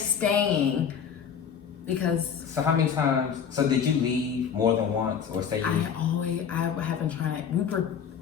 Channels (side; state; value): right; quieter; 7.5 dB